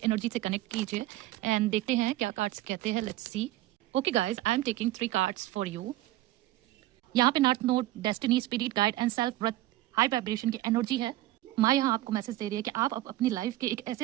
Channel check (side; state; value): left; quieter; 15.7 dB